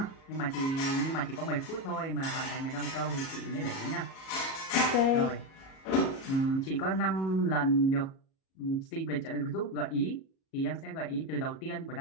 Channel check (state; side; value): late; right; 37 ms